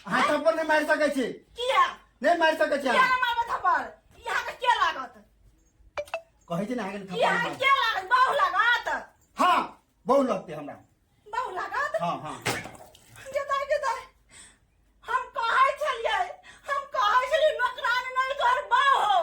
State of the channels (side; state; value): both; identical; correlation 1.00